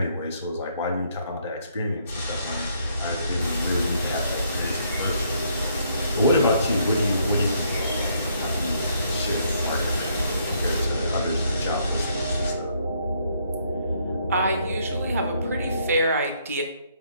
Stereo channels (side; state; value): both; inverted; correlation -0.70